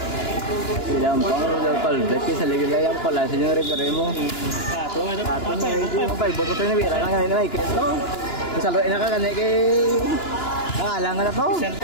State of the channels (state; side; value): late; right; 2.9 ms